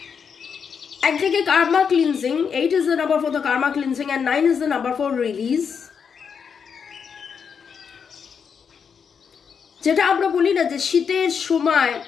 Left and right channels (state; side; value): quieter; right; 6.6 dB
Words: একদিকে Karma cleansing, 8 is the number for the karma cleansing and 9 is the number for release। যেটা আমরা বলি না যে শীতের সময়